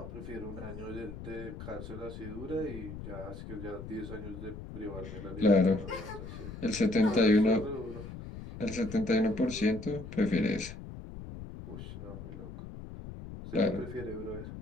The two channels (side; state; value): left; noise; rumble, 11 dB below the sound